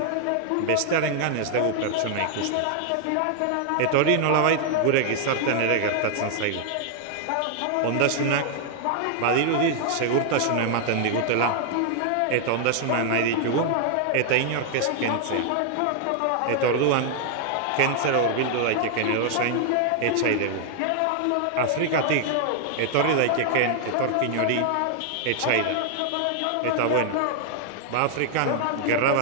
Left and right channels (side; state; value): both; different; correlation 0.00